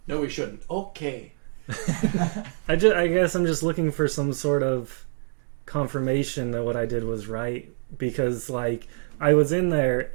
No, we shouldn't. Okay. I guess I'm just looking for some sort of confirmation that what I did was right. Because, like, I was in there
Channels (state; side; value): silent; left; digital silence